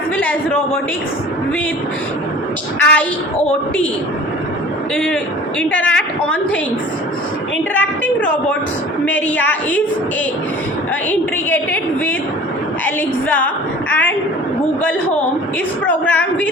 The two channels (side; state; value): both; normal; correlation 0.44